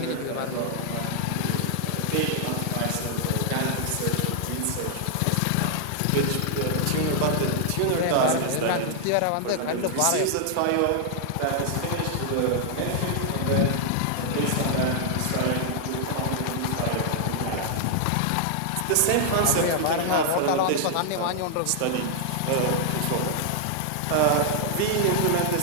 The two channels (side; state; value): both; different; correlation 0.00